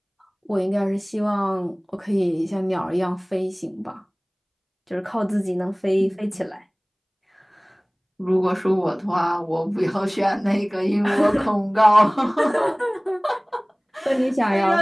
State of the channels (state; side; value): identical; both; correlation 1.00